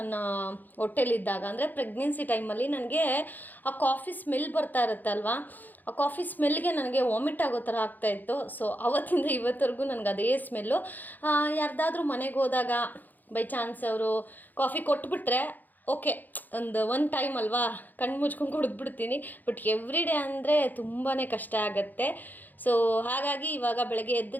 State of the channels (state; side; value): late; right; 0.085 ms